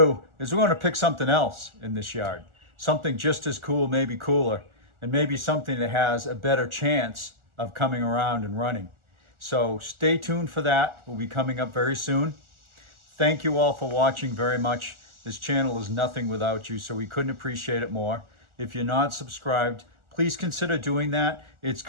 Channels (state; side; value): late; left; 1.4 ms